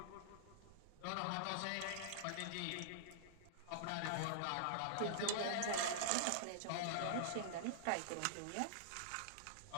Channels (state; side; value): different; both; correlation -0.01